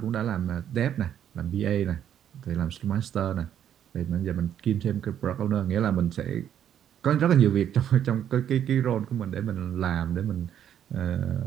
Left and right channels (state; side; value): quieter; left; 9.8 dB